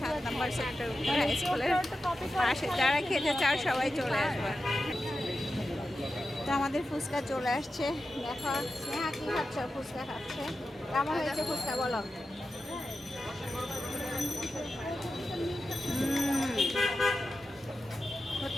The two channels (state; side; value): normal; both; correlation 0.91